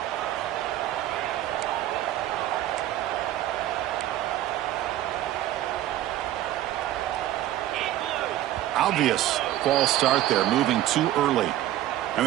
Obvious false start there, moving too early. And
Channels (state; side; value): quieter; left; 13.6 dB